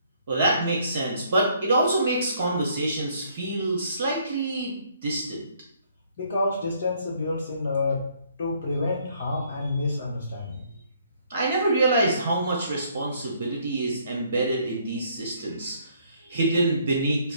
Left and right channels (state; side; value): inverted; both; correlation -0.65